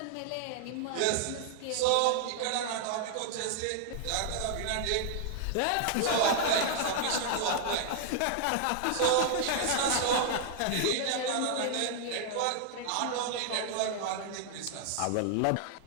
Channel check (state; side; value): different; both; correlation 0.00